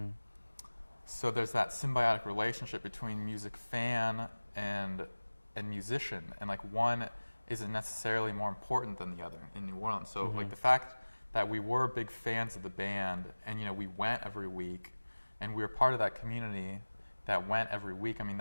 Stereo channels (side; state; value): both; inverted; correlation -1.00